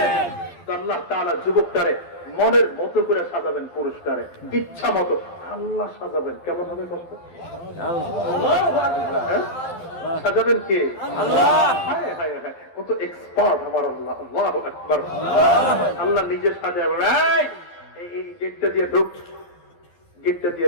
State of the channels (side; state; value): right; late; 12 ms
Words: আল্লাহ তাআলা যুবকটারে মনের মতো করে সাজাবেন, পুরুষটারে ইচ্ছা মতো আল্লাহ সাজাবেন। কেমন হবে কষ্ট? সাজাবেন কে? আল্লাহ। হায় হায় হায়, কত এক্সপার্ট আমার আল্লাহ। আল্লাহু আকবার। আল্লাহ নিজে সাজাবেন। এই গেটটা দিয়ে ঢুক, গেটটা দিয়ে